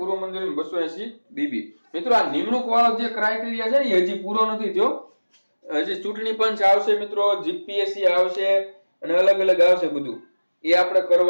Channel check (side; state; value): both; inverted; correlation -1.00